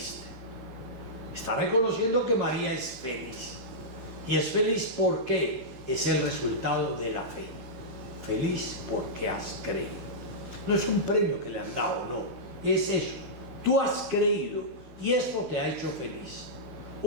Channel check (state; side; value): late; left; 12 ms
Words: Está reconociendo que María es feliz. Y es feliz porque es el resultado de la fe. Feliz porque has creído. No es un premio que le han dado, no. Es eso. Tú has creído y eso te ha hecho feliz.